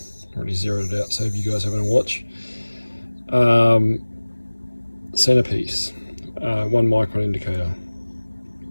already zeroed it out so if you guys having a watch. Centerpiece, 1 micron indicator.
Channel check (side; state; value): both; inverted; correlation -1.00